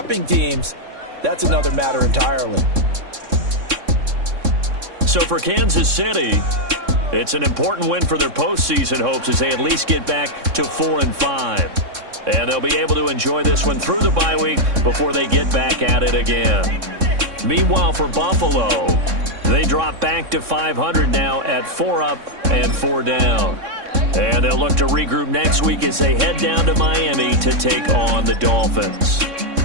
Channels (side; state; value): left; late; 3.6 ms